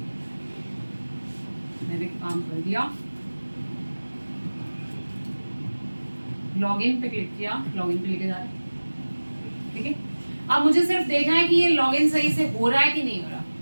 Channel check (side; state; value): both; inverted; correlation -1.00